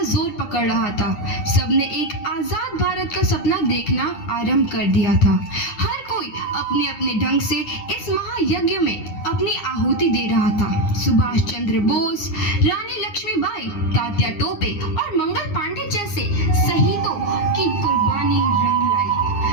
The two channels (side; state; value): right; late; 9.8 ms